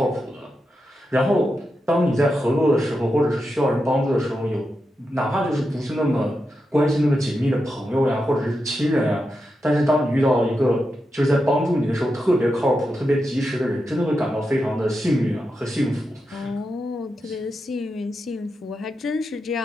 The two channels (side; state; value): both; normal; correlation 0.88